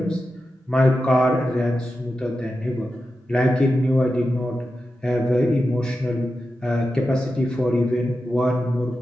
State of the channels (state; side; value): normal; both; correlation 0.91